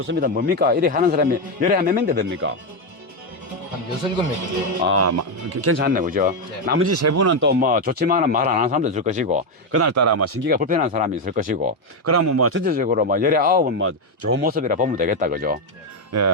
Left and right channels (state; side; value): normal; both; correlation 0.06